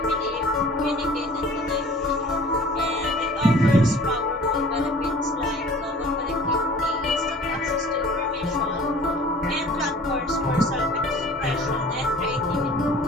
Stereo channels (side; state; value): both; normal; correlation 0.47